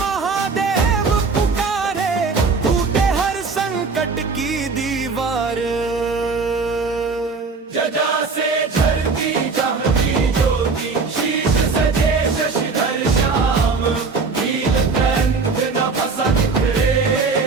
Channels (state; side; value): quieter; left; 4.5 dB